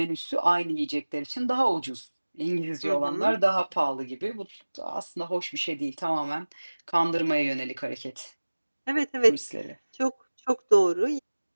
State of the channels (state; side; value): inverted; both; correlation -1.00